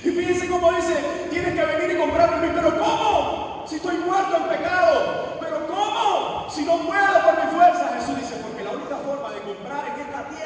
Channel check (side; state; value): both; identical; correlation 1.00